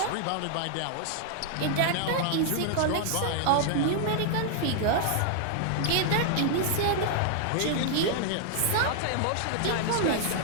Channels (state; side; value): different; both; correlation 0.00